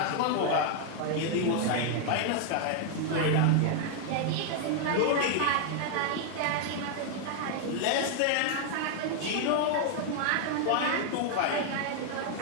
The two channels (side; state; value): both; different; correlation 0.00